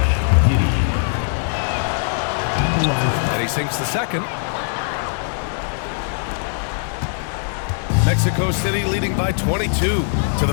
Giddey. And he sinks the second. Mexico City leading by 22 to the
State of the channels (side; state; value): right; silent; digital silence